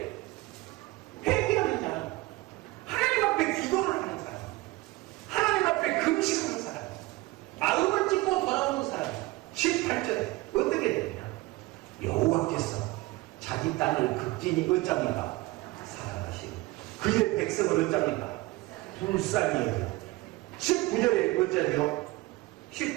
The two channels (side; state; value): left; quieter; 20.6 dB